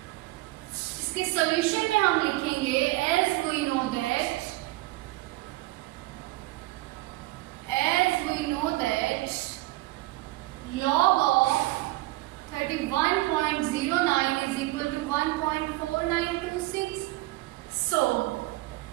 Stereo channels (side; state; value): left; quieter; 19.5 dB